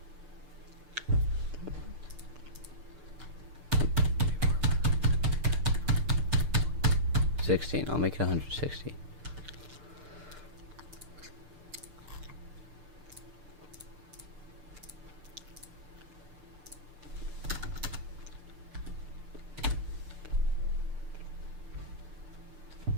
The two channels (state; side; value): late; left; 6.6 ms